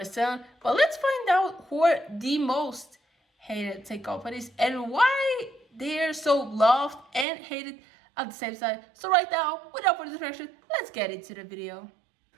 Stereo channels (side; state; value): left; drops out; at 7.2 s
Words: But let's find out who are the most hated tech companies and why they're so loved and hated at the same time. So right now, without further distraction, let's get into the video.